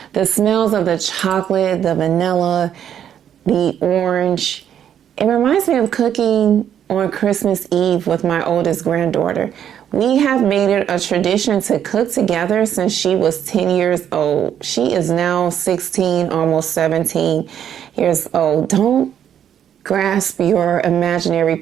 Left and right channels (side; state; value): left; quieter; 9.5 dB